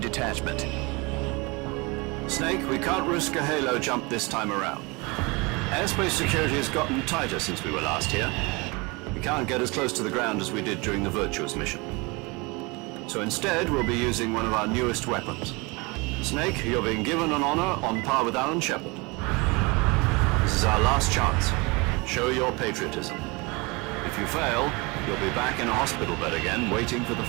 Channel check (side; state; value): left; quieter; 26.8 dB